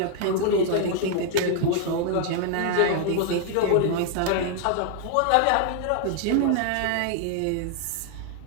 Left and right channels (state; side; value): different; both; correlation 0.00